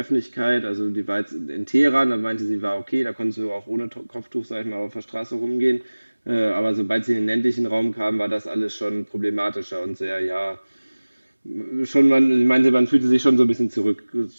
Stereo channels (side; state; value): both; inverted; correlation -1.00